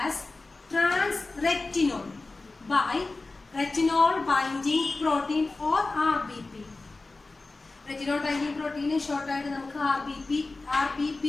as transretinol by retinol binding protein or RBP. Retinol binding protein short ആയിട്ട് നമുക്ക് RBP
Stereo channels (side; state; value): right; quieter; 3.4 dB